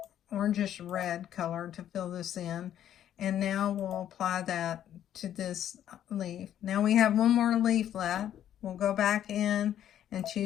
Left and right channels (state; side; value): quieter; right; 10.8 dB